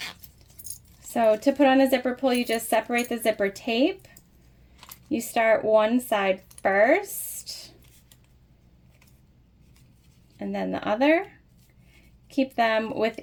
So to put on a zipper pull, you just separate the zipper tape. You start one side first, and then the other. Keep them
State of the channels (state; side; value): identical; both; correlation 1.00